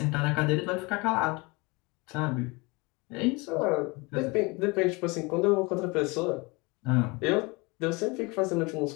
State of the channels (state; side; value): quieter; right; 26.4 dB